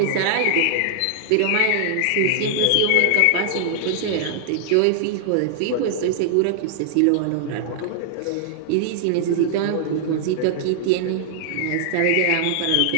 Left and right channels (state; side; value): different; both; correlation -0.01